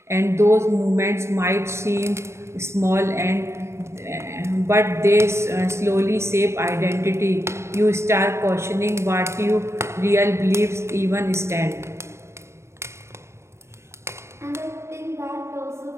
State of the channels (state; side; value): late; left; 0.13 ms